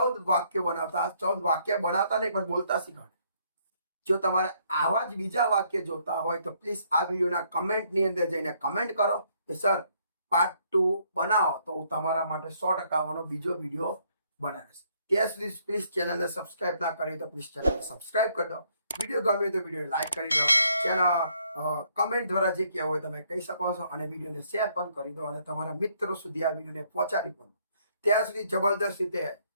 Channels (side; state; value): both; inverted; correlation -0.68